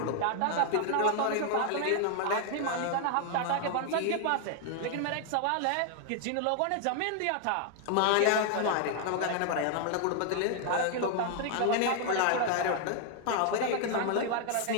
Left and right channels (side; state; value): both; different; correlation 0.00